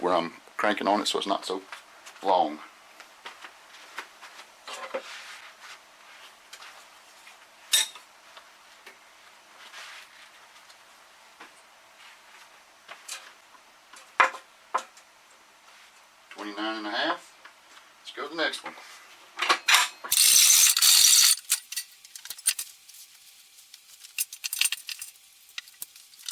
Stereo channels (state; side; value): identical; both; correlation 1.00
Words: where I'm cranking on it so it's not so long. $29.5. Let's go to the next one.